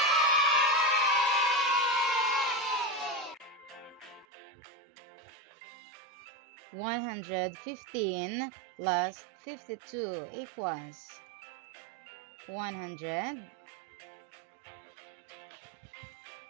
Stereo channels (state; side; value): drops out; left; at 4.2 s